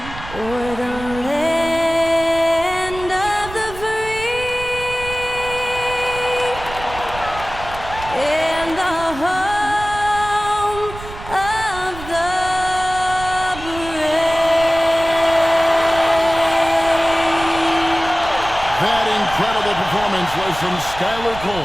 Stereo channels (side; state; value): right; noise; rumble, 13 dB below the sound